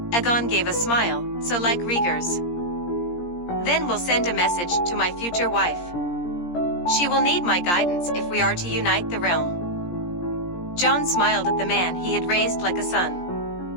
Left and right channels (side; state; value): right; late; 17 ms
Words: Aegon gave a smile, so like Rhaegar's. Then we'll send a message to my future wife. She will need my guidance if we are to unite the realm. Jon smiled at the man he had raised like a